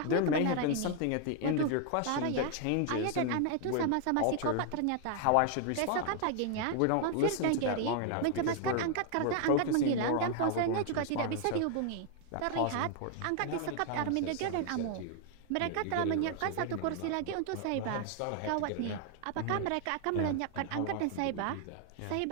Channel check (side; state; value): both; different; correlation 0.00